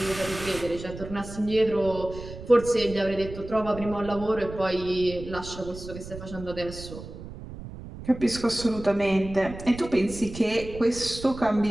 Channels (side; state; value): right; noise; rumble, 12 dB below the sound